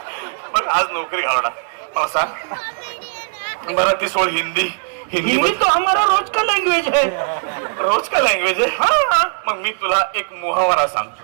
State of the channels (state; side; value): silent; left; digital silence